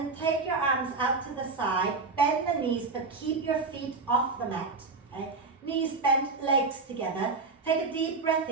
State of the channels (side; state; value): left; quieter; 4.1 dB